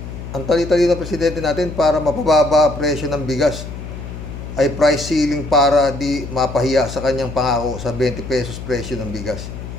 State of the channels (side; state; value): left; noise; hum, 10 dB below the sound